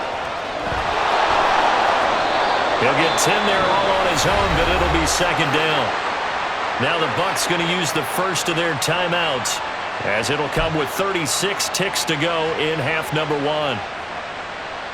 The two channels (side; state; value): both; identical; correlation 1.00